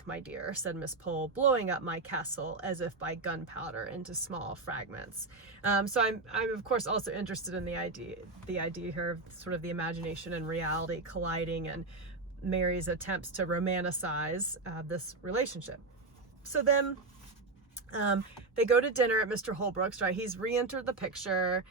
my dear," said Miss Pole, blowing up my castle as if by gunpowder into small fragments. So I'm of course also interested in the idea here of sort of the imagination and reality colliding, and Mary's attempts to romanticize this relationship. So then they go to dinner at Mr. Holbrook's, right? He's re-entered the picture.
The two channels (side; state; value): left; quieter; 3.6 dB